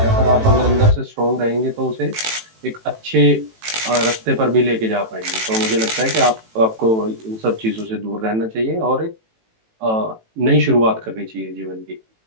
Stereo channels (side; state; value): left; late; 18 ms